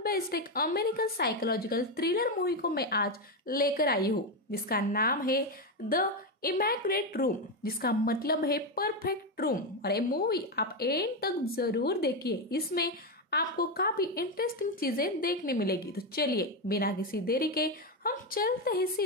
एक अमेरिकन साइकोलॉजिकल थ्रिलर मूवी को मैं आज लेकर आई हूँ, जिसका नाम है द इमैक्युलेट रूम, जिसका मतलब है परफेक्ट रूम। और ये मूवी आप एंड तक जरूर देखिए, इसमें आपको काफी इंटरेस्टिंग चीजें देखने मिलेगी। तो चलिए बिना किसी देरी के हम चलते हैं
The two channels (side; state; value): both; normal; correlation 0.09